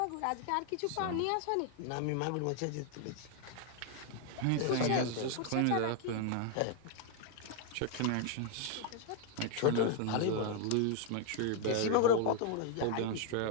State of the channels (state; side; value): different; both; correlation 0.00